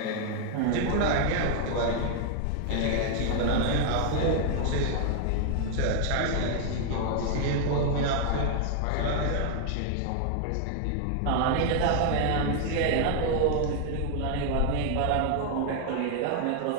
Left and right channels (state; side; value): different; both; correlation 0.00